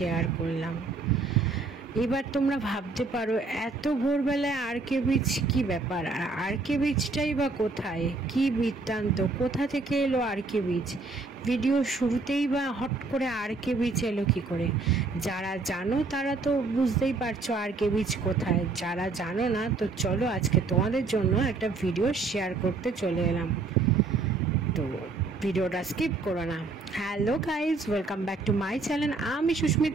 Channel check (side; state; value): left; quieter; 3.8 dB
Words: করলাম। এবার তোমরা ভাবতে পারো এত ভোরবেলায় আর.কে বিচ কি ব্যাপার, আর আর.কে বিচটাই বা কোথায়, কি বৃত্তান্ত, কোথা থেকে এলো আর.কে বিচ, ভিডিও শুরুতেই বা হট করে আর.কে বিচ এলো কি করে। যারা জানো তারা তো বুঝতেই পারছো আর.কে বিচ কোথায়, যারা জানো না তো চলো আজকে তোমাদের জন্য একটা ভিডিও শেয়ার করতে চলে এলাম, তো ভিডিওটা স্কিপ করো না। Hello guys, welcome back to my channel. আমি